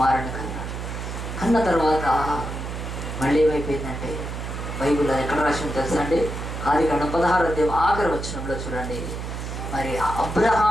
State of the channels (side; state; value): right; noise; hum, 6 dB below the sound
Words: కన్నాడు. కన్న తర్వాత మళ్ళీ ఏమైపోయిందంటే, బైబిల్ ఎక్కడ రాసి తెలుసా అండి? ఆదికాండం 16వ అధ్యాయం ఆఖరి వచనంలో చూడండి. మరి